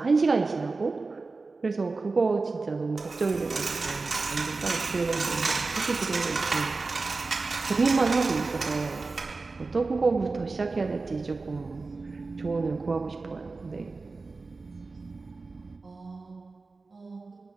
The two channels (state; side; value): quieter; left; 3.8 dB